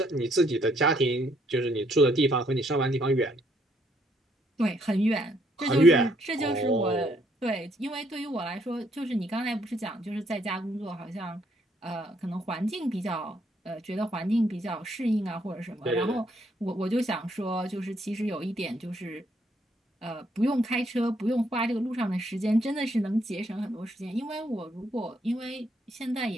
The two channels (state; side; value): normal; both; correlation 0.70